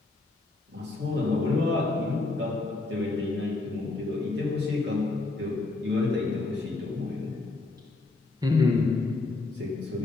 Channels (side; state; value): right; quieter; 3.3 dB